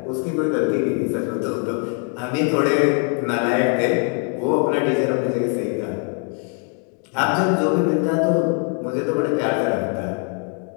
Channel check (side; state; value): right; quieter; 39.9 dB